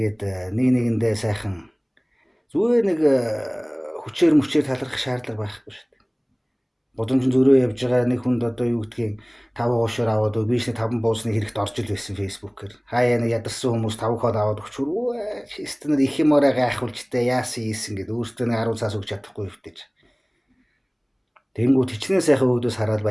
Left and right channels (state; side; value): identical; both; correlation 1.00